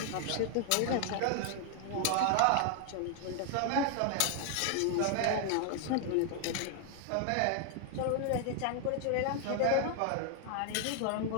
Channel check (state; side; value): different; both; correlation 0.00